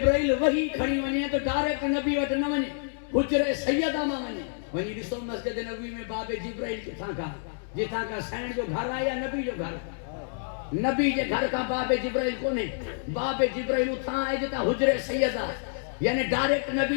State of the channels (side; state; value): right; silent; digital silence